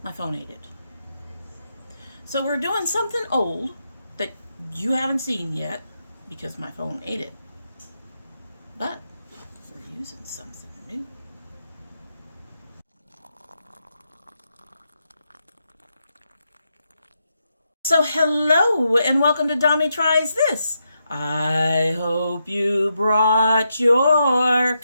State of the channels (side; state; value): both; inverted; correlation -0.83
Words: My phone ate it. So we're doing something old that you haven't seen yet because my phone ate it. But we're using something new. So hello and welcome to Domytriesthis. I hope you brought your